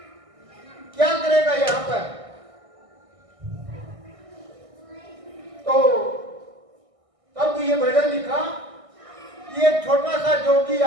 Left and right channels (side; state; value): left; late; 1.6 ms